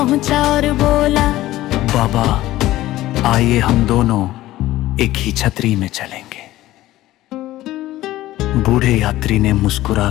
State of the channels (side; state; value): right; quieter; 15.8 dB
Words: और बोला, बाबा, आइए हम दोनों एक ही छतरी में चलेंगे। बूढ़े यात्री ने